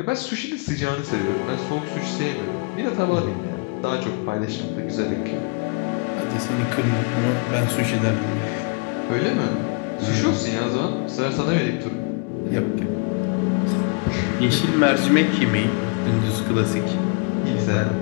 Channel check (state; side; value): quieter; right; 33.3 dB